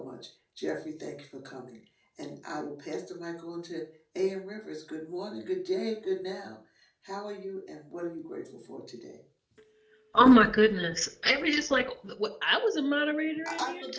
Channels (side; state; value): both; identical; correlation 1.00